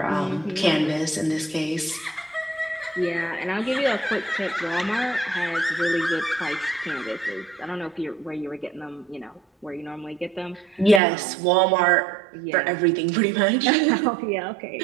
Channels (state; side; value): drops out; left; at 11.0 s